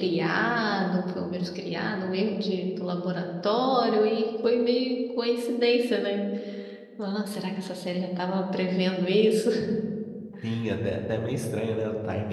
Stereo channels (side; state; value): both; identical; correlation 1.00